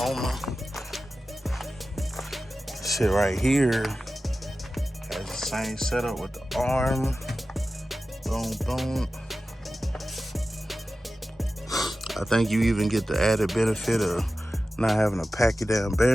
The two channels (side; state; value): both; normal; correlation 0.94